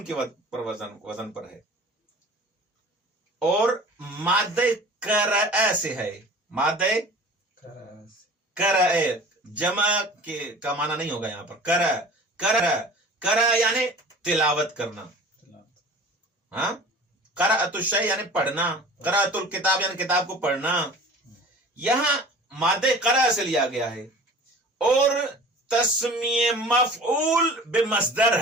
کے وزن پر ہے، اور مادہ قرأ سے ہے. مادہ قرأ جمع کا معنی نہیں ہوگا یہاں پر. قرأ یعنی تلاوت کرنا. ہاں قرأت الشیء یعنی پڑھنا، قرأت الکتاب یعنی کتاب کو پڑھنا. یہاں مادہ قرأ سے لیا گیا ہے، اور تسمیہ مفعول بمصدر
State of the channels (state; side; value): normal; both; correlation 0.43